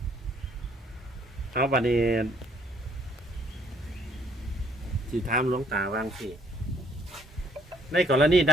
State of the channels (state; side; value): normal; both; correlation 0.64